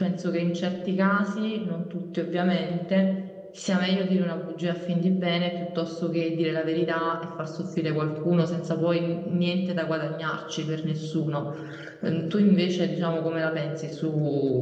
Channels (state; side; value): identical; both; correlation 1.00